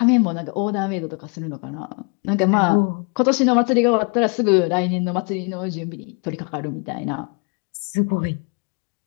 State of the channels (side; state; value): right; quieter; 35.3 dB